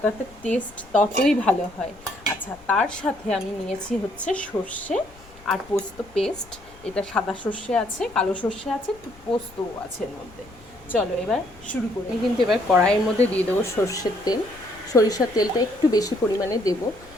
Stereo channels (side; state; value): left; noise; rumble, 23 dB below the sound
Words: টেস্ট ততই ভালো হয়। আচ্ছা, তার সাথে আমি নিয়েছি হচ্ছে সর্ষে আর পোস্ত পেস্ট। এটা সাদা সর্ষে আছে, কালো সর্ষে আছে, পোস্তও আছে এর মধ্যে। চলো এবার শুরু করি। আমি কিন্তু এবার কড়াইয়ের মধ্যে দিয়ে দেবো সর্ষের তেল। সরিষার তেলটা একটু বেশি পরিমাণে দেব।